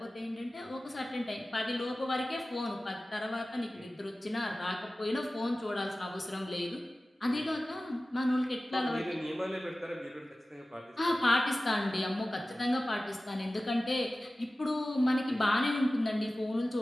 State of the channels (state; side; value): normal; both; correlation 0.96